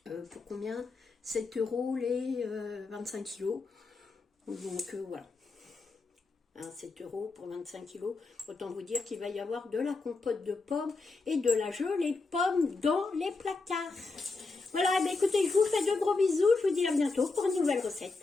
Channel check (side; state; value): right; quieter; 3.8 dB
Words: Pour combien? 7 € les 25 kilos. Donc voilà. 7 € pour 25 kilos. Autant vous dire qu'il va y avoir de la compote de pommes et de la gelée de pommes dans les placards. Voilà, écoutez, je vous fais de gros bisous. Je vous dis à bientôt pour une nouvelle recette.